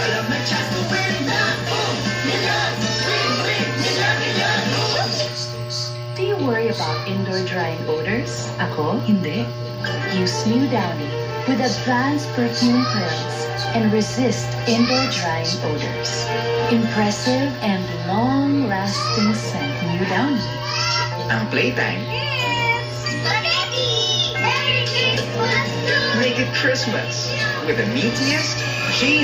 may chance to win na. Million! Win! Win! Million! Million! Do you worry about indoor drying odors? Ako, hindi. Use New Downy with advanced perfume pearls and resist indoor drying odors. Impressive and long-lasting scent. New Downy. Ang playtime, Spaghetti! Merry Christmas! make it Christmas with the meatiest,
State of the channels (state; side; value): identical; both; correlation 1.00